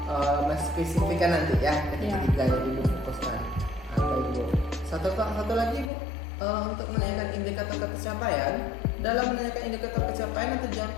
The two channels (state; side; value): drops out; right; at 5.9 s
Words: spesifikkan nanti ya ketiga-tiganya ibu fokuskan. Baik Bu, satu lagi Bu, untuk menanyakan indikator pencapaian. Dalam menanyakan indikator pencapaian atau tujuan